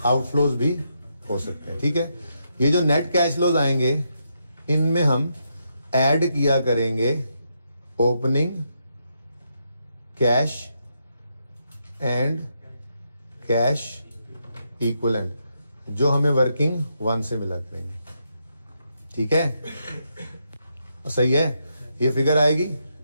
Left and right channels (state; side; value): inverted; both; correlation -0.81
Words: आउटफ्लोज भी हो सकते हैं, ठीक है। ये जो नेट कैश फ्लोज आएंगे इनमें हम ऐड किया करेंगे opening cash and cash equivalent, जो हमें वर्किंग 1 से मिला करेंगे, ठीक है, सही है। ये फिगर आएगी,